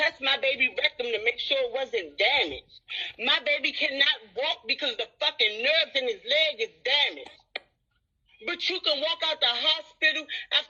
my baby rectum to make sure it wasn't damaged. My baby cannot walk because the fucking nerves in his leg is damaged. But you can walk out the hospital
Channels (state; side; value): identical; both; correlation 1.00